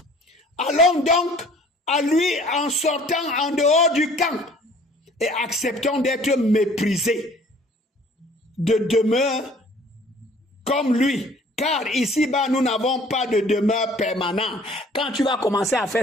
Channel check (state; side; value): normal; both; correlation 0.53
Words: allons donc à lui en sortant en dehors du camp et acceptons d'être méprisés de demeure comme lui. Car ici-bas, nous n'avons pas de demeure permanente. Quand tu vas commencer à